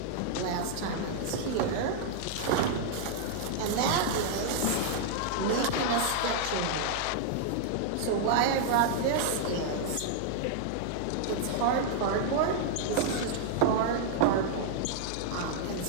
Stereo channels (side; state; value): both; different; correlation -0.01